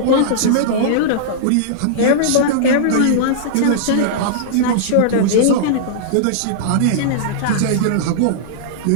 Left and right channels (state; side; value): different; both; correlation -0.02